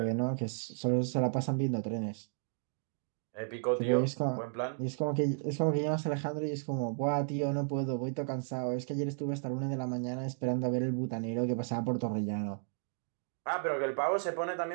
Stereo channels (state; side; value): silent; left; digital silence